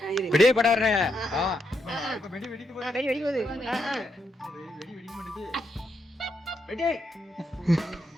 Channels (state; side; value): normal; both; correlation 0.79